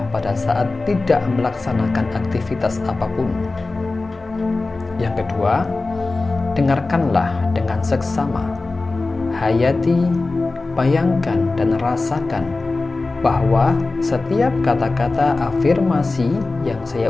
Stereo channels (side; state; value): right; quieter; 3.4 dB